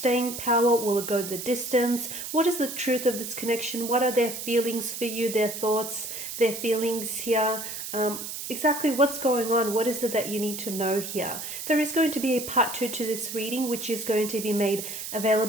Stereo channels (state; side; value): noise; right; hiss, 7 dB below the sound